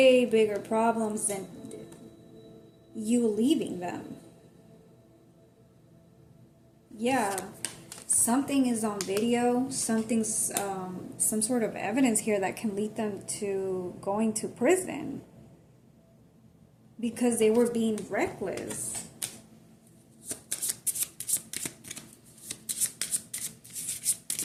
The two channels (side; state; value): both; identical; correlation 1.00